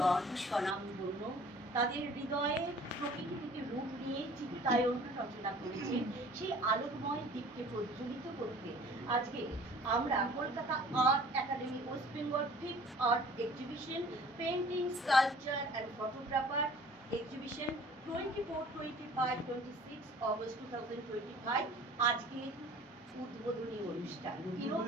স্বনামধন্য, তাদের হৃদয়ে প্রকৃতি থেকে রূপ নিয়ে চিত্তায়ন রচনা করেছে সেই আলোকময় দিককে প্রজ্বলিত করতে আজকে আমরা Kolkata art academy West Bengal 5th art exhibition painting sculpture and photographer exhibition 24, 25, 26 August 2025 আজকে উদ্বোধনী অনুষ্ঠান।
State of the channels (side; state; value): both; normal; correlation 0.49